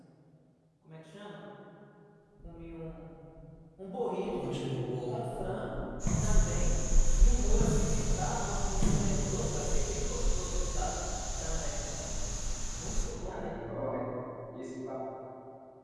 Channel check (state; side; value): identical; both; correlation 1.00